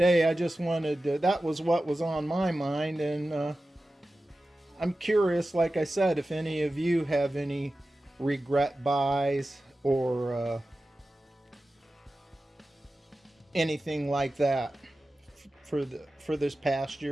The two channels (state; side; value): normal; both; correlation 0.94